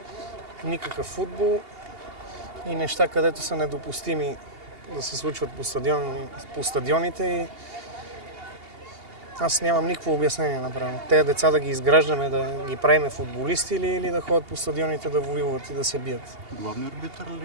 никакъв футбол и неща, където са недопустими да се случват по стадионите. И аз нямам никакво обяснение направо. Те деца да ги изграждаме, да ги правиме футболисти или да ходят по стадионите да воюват и да се бият. Главният арбитър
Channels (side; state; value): left; late; 2.8 ms